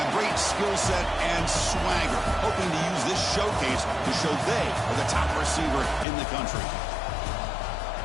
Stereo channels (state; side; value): drops out; right; at 6.1 s